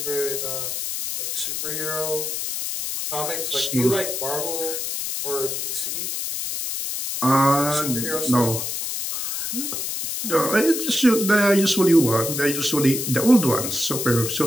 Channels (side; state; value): left; noise; hiss, 3 dB below the sound